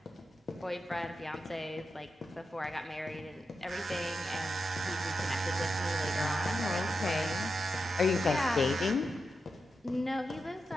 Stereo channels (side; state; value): both; normal; correlation 0.88